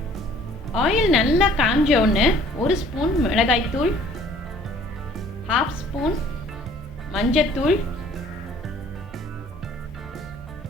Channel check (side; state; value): both; normal; correlation 0.54